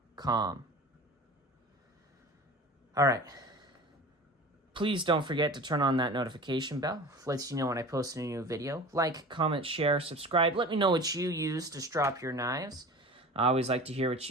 All right. Please don't forget to turn on that notification bell. Lets you know when I post a new video. Like, comment, share, subscribe. Let me know what you use to strop your knives. I always like to hear what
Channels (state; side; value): normal; both; correlation 0.37